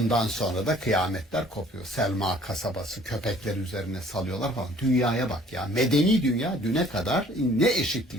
sonra da kıyametler kopuyor. Selma kasabası köpekler üzerine salıyorlar falan. Dünyaya bak ya. Medeni dünya düne kadar ne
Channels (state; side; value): normal; both; correlation 0.55